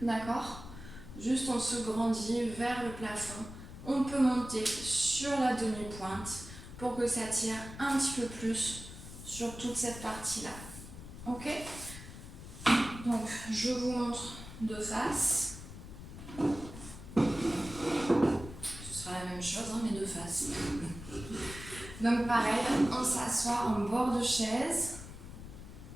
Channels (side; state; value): left; noise; rumble, 13 dB below the sound